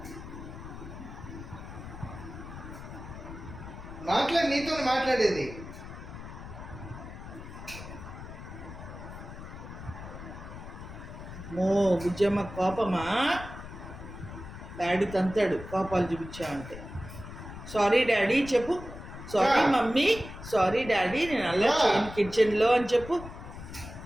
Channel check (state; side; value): noise; left; rumble, 12 dB below the sound